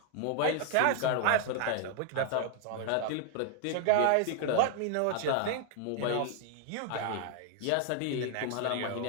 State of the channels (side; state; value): both; different; correlation 0.00